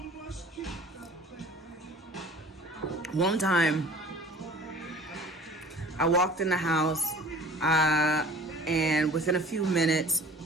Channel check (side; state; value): both; normal; correlation 0.46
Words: One time, I walked in the house, and within a few minutes,